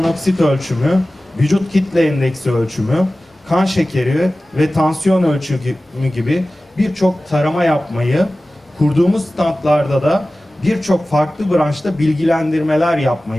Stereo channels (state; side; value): normal; both; correlation 0.96